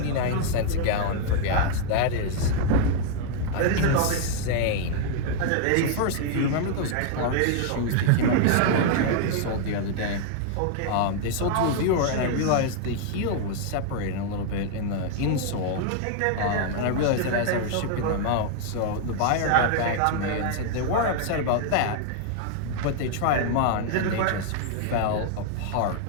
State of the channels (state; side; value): different; both; correlation 0.00